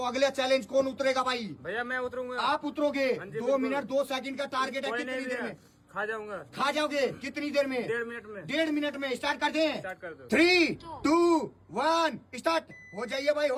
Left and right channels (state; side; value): identical; both; correlation 1.00